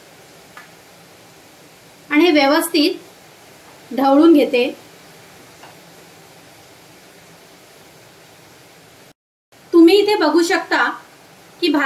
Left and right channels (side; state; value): both; identical; correlation 1.00